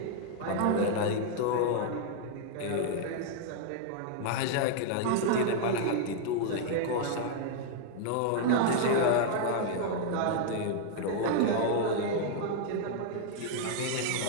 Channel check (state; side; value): different; both; correlation 0.00